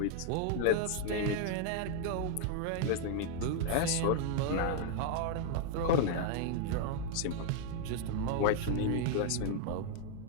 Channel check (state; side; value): different; both; correlation 0.00